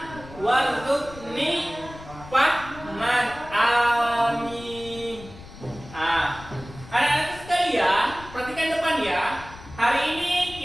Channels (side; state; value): left; noise; rumble, 17 dB below the sound